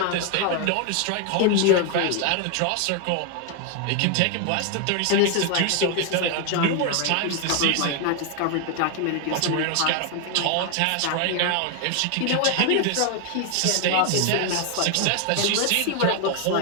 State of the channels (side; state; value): both; different; correlation 0.01